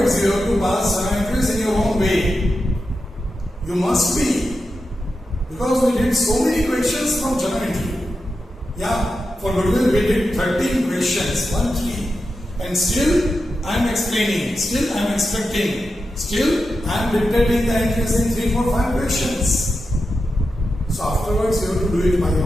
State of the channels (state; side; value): normal; both; correlation 0.89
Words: you have to pass journal entries in your own way. You must be. Because we did so many questions from journal entry. Yeah. For goodwill, we did 13 questions, 1, 3, and still I am explaining, still I am expecting, still I am dictating the entries in 3, 4, 5 questions. So afterwards, you have to do it by